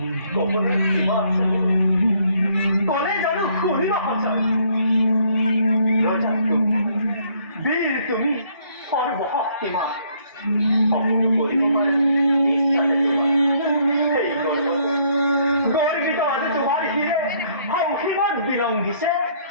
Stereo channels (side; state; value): both; inverted; correlation -0.65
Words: কবলে কিবা আছে কোনে জানো শুনিব সঁচা ৰজা বীৰ তুমি সৰ্বশক্তিমান সকলো কৰিব পাৰে ইচ্ছাতে তোমাৰ সেই গৰ্বিত আজি তোমাৰ শিৰে সংসীমত বিলংঘিছে